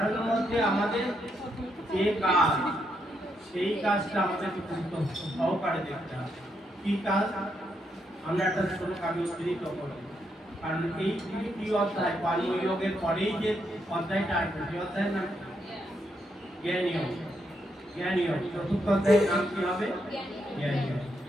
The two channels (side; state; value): both; normal; correlation 0.79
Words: মধ্যে আমাদের যে কাজ, সেই কাজটা আমাদের গুরুত্ব সহকারে দেখতে হবে। কি কাজ? আমরা একটা শ্লোক আমি উদ্ধৃত করব, কারণ এই 3টি অধ্যায় কর্মযোগের পরেই যে অধ্যায়টা আসবে, সেই অধ্যায়ের নাম জ্ঞানযোগ। জ্ঞানযোগ 4র্থ অধ্যায়ের নাম কি হবে? জ্ঞানযোগ।